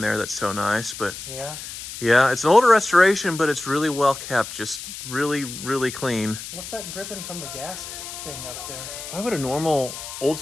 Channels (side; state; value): left; noise; hiss, 10 dB below the sound